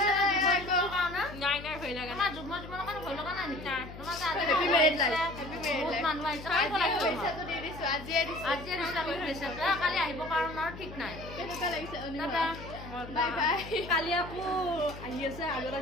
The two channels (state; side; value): noise; left; hum, 13 dB below the sound